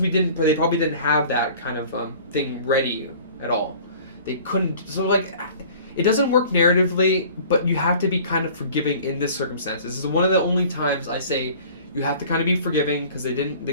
they probably didn't have that kind of thing ready at all. They couldn't. So, like, it doesn't work narratively, but you have to be kind of forgiving in this circumstance. This is one of the only times I say you have to kind of be forgiving because they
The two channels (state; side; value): inverted; both; correlation -0.47